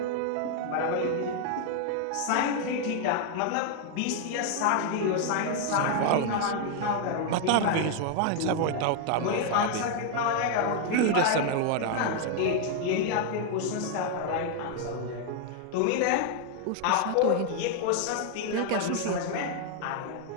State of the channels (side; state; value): both; different; correlation 0.00